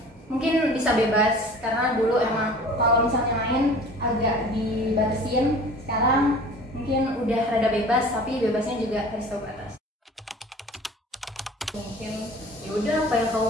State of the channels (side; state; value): both; normal; correlation 0.44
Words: mungkin bisa bebas, karena dulu emang kalau misalnya main agak dibatasin. Sekarang mungkin udah rada bebas, tapi bebasnya juga harus tahu batas. Mungkin ya udah apa yang